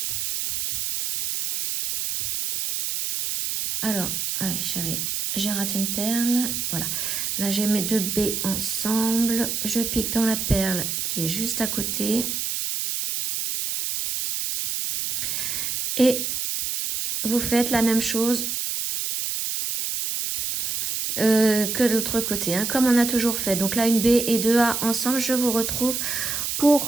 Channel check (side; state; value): right; noise; hiss, 2 dB below the sound